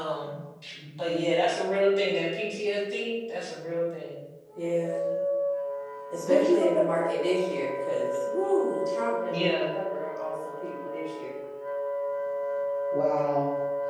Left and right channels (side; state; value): both; identical; correlation 1.00